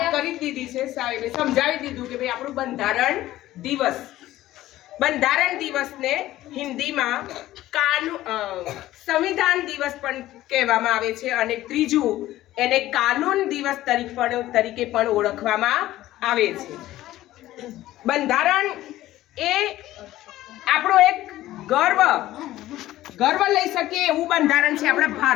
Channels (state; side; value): quieter; right; 15.1 dB